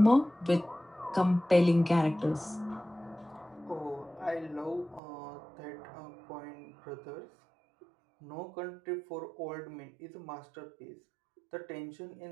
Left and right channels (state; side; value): drops out; left; at 5.0 s